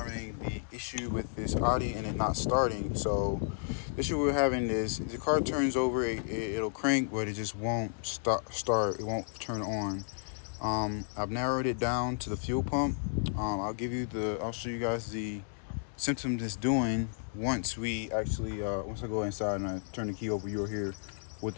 the issue with this Audi and it not starting. So the issue we're having is the car turns over, it'll crank, but it just won't start, it won't turn on. I've narrowed it down to the fuel pump. I'll show you guys the symptoms it's doing once once I go inside and I turn the key over. You'll hear what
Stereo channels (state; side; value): silent; right; 55 dB below the other